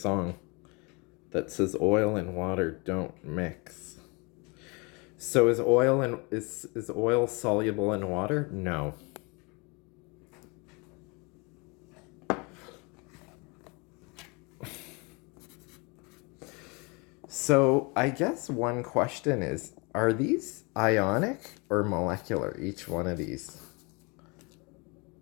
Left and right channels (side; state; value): right; quieter; 29.5 dB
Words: that says oil and water don't mix. So is oil soluble in water? No. So I guess one question is, are these ionic or molecular, each one of these?